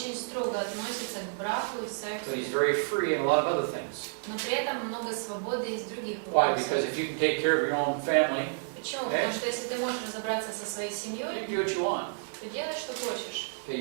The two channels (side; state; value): left; silent; digital silence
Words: строго относится к браку и сексу, So He's very free in a lot of other things. но при этом много свободы из других Why? вопросов. Because if you can take care of your own family, Почему? Потому что если ты можешь разобраться со своей you семьей, can do what you want. то делай, что хочешь. Okay,